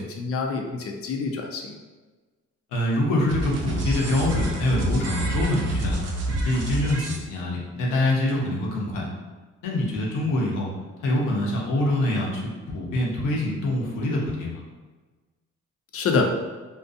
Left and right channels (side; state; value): both; normal; correlation 0.59